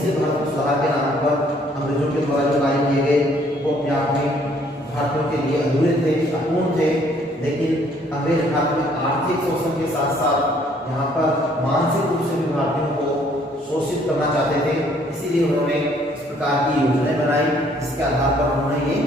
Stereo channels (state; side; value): normal; both; correlation 0.63